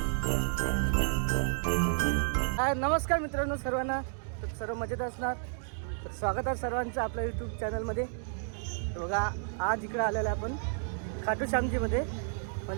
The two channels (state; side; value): silent; left; digital silence